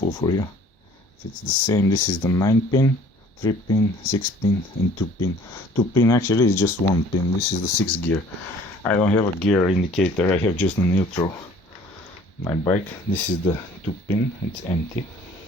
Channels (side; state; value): both; normal; correlation 0.52